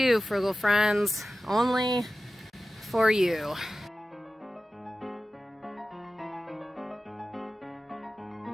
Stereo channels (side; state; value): both; normal; correlation 0.95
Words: Frugal Friends. Only for you.